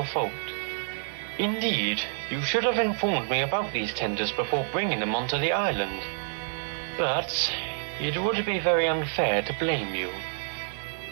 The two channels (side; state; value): left; silent; digital silence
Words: fault. Indeed, you should have informed me about these tenders before bringing them onto the island. But it would be very unfair to blame you.